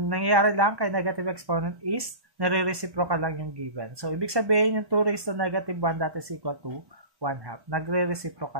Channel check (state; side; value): late; left; 1.2 ms